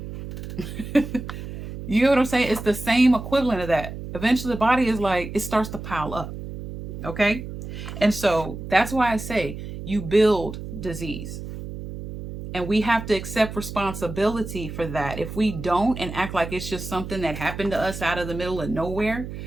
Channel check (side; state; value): right; noise; hum, 9 dB below the sound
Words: You know what I'm saying? It's the same equivalent of that. Eventually the body is like, it starts to pile up. Okay. And so that's why I say you build disease. And we have to accept responsibility for that. If we don't and act like it's just something that happened to us out of the middle of nowhere,